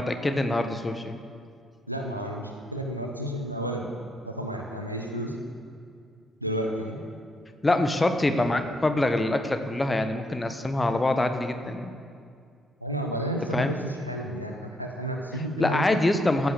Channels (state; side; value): normal; both; correlation 0.74